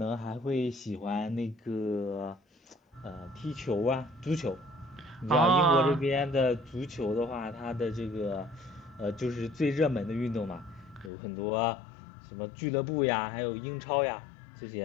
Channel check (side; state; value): right; drops out; at 11.1 s